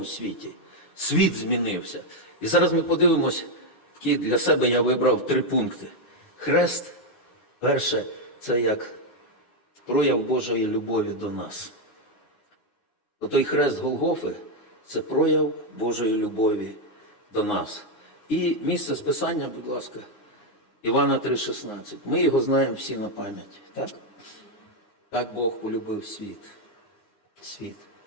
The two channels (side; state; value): right; late; 9.6 ms